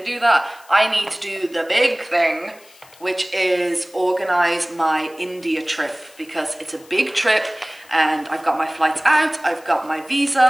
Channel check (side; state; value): left; noise; hiss, 25 dB below the sound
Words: do that. I need to do the big thing, which is organize my India trip, because it's a big trip and I've got my flights out, I've got my